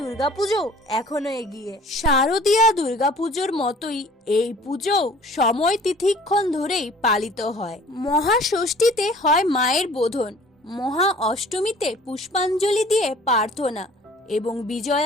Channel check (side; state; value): both; normal; correlation 0.50